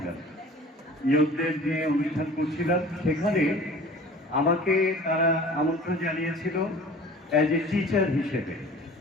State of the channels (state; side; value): normal; both; correlation 0.44